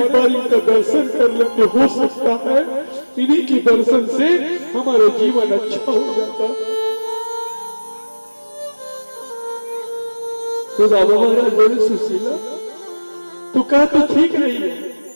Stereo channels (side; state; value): both; inverted; correlation -1.00